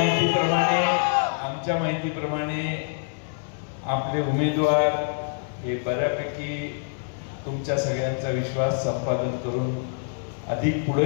आमच्या माहितीप्रमाणे आपले उमेदवार हे बऱ्यापैकी तुमच्या सगळ्यांचा विश्वास संपादन करून अधिक पुढे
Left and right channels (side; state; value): right; silent; digital silence